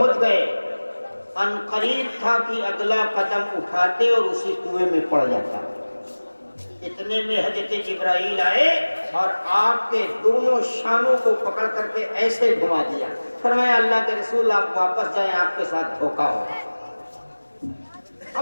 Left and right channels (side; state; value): both; inverted; correlation -1.00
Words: گئے ان قریب تھا کہ اگلا قدم اٹھاتے اور اسی کنویں میں پڑ جاتا. اتنے میں حضرت جبرائیل آئے اور آپ کے دونوں شانوں کو پکڑ کر کے ایسے گھما دیا. فرمایا اللہ کے رسول آپ واپس جائیں، آپ کے ساتھ دھوکا ہو.